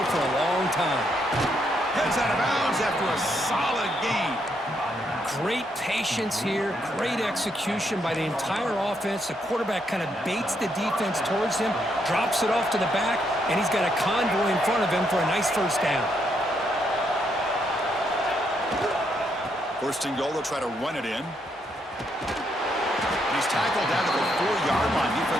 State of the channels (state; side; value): normal; both; correlation 0.76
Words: for a long time. Heads out of bounds after a solid gain. Great patience here, great execution by the entire offense. The quarterback kind of baits the defense towards him, drops it off to the back, and he's got a convoy in front of him for a nice first down. First and goal, they'll try to run it in. He's tackled down to the 4-yard line.